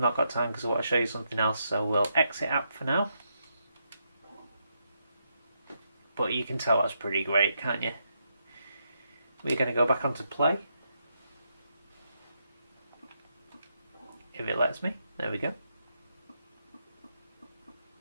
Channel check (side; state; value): both; inverted; correlation -0.80